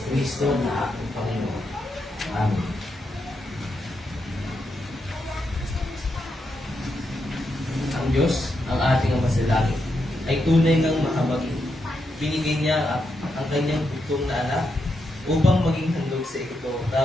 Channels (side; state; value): both; normal; correlation 0.83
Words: na aking Panginoon. Amen. ang Diyos, ang ating Ama sa langit, ay tunay ng mahabagin. Binigay niya ang kanyang bugtong na anak upang maging handog sa